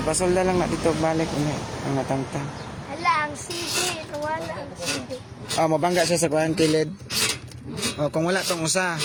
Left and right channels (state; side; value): identical; both; correlation 1.00